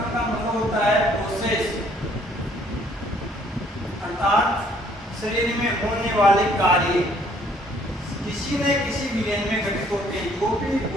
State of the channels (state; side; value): normal; both; correlation 0.62